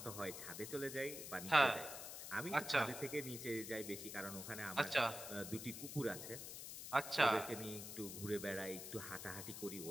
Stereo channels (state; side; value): noise; left; hiss, 8 dB below the sound